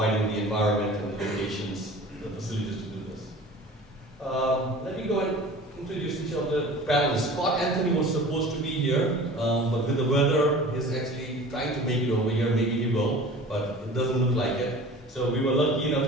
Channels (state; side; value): normal; both; correlation 0.41